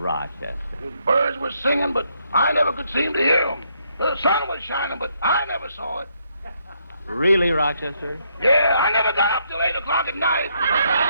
The birds were singing, but I never could seem to hear them. The sun was shining, but I never saw it. Really, Rochester? Yeah, I never got up till 8 o'clock at night.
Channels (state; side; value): inverted; both; correlation -0.74